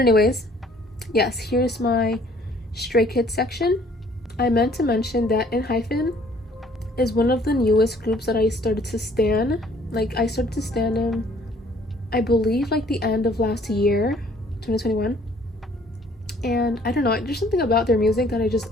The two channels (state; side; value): normal; both; correlation 0.59